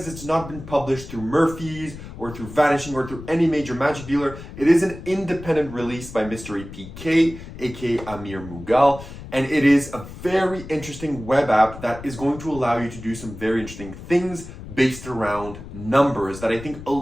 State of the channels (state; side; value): noise; left; rumble, 13 dB below the sound